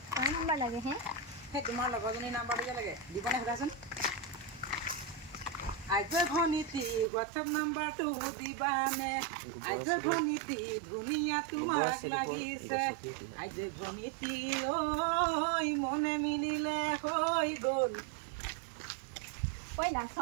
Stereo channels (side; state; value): left; drops out; at 7.1 s